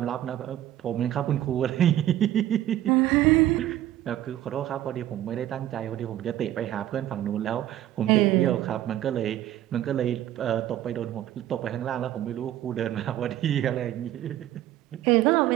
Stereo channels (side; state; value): left; quieter; 13.0 dB